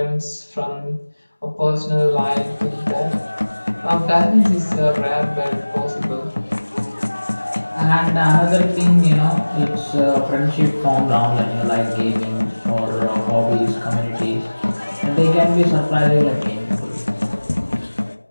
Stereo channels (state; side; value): inverted; both; correlation -1.00